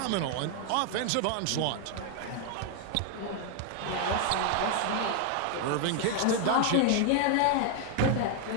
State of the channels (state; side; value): different; both; correlation 0.00